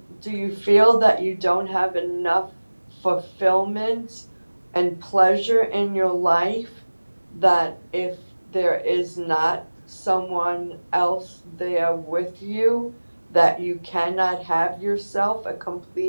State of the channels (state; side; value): inverted; both; correlation -1.00